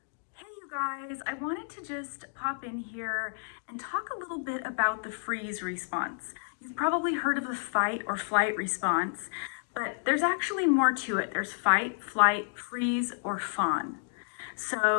Hey you guys, I wanted to just pop in here and talk a little bit about the freeze response. You've probably heard of the fight or flight response, but there's actually more to it. There's fight, flight, freeze, or fawn.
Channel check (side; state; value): right; silent; digital silence